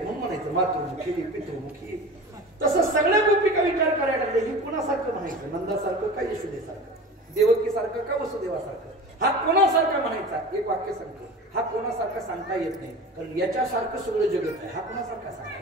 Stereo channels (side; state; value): both; normal; correlation 0.35